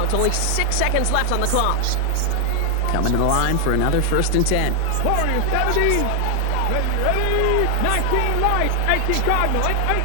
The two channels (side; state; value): both; different; correlation 0.00